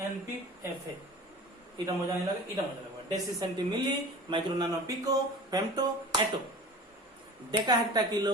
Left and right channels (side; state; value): both; normal; correlation 0.38